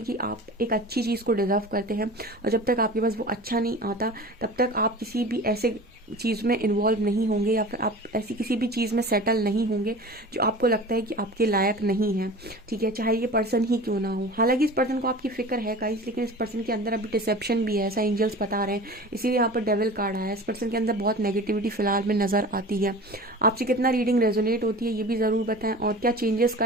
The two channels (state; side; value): normal; both; correlation 0.37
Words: कि आप एक अच्छी चीज़ को डिजर्व करते हैं, और जब तक आपके पास वो अच्छा नहीं आता तब तक आप किसी भी ऐसे चीज़ में इन्वॉल्व नहीं होंगे, या फिर आप ऐसी किसी भी चीज़ में सेटल नहीं होंगे जो आपको लगता है कि आपके लायक नहीं है, ठीक है, चाहे ये पर्सन ही क्यों ना हो। हालांकि इस पर्सन को आपकी फिक्र है गाइस, लेकिन इस पर्सन के अंदर अभी डिसेप्शन भी है, ऐसा एंजल्स बता रहे हैं। इसीलिए यहाँ पर डेविल कार्ड आया है। इस पर्सन के अंदर बहुत नेगेटिविटी फिलहाल में नज़र आती है। आपसे कितना रीडिंग रेजोनेट होती है ये भी ज़रूर बताएं, और क्या चेंजेस